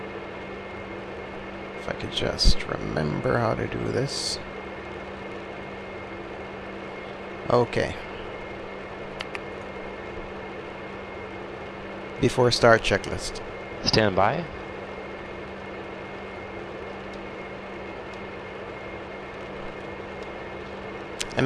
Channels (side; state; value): both; identical; correlation 1.00